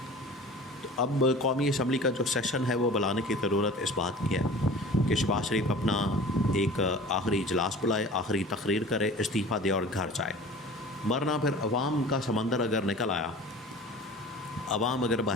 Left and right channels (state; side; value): normal; both; correlation 0.41